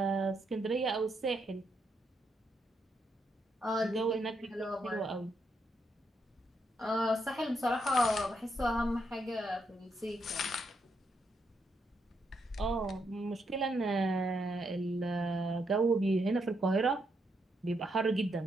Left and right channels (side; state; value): both; normal; correlation 0.79